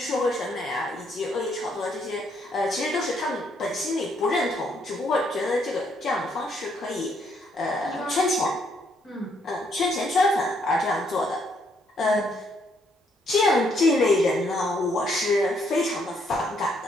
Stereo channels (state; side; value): normal; both; correlation 0.71